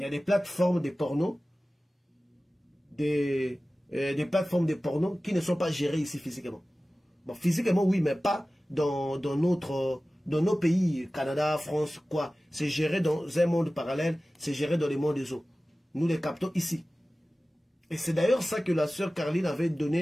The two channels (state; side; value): normal; both; correlation 0.96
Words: y a des plateformes de porno, des plateformes de porno qui ne sont pas gérées ici physiquement. Bon, physiquement, oui, mais pas dans nos pays, Canada, France, quoi. C'est géré dans un monde parallèle, c'est géré dans les mondes des eaux. Nous les captons ici. Et c'est d'ailleurs ça que la sœur Caroline avait